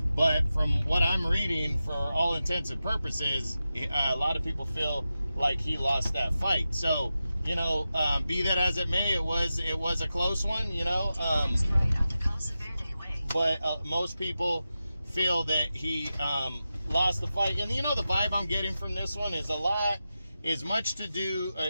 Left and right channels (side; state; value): both; inverted; correlation -0.92